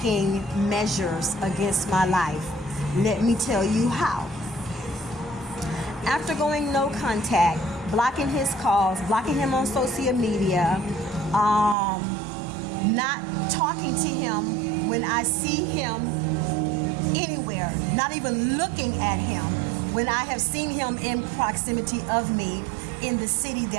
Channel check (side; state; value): left; drops out; at 11.8 s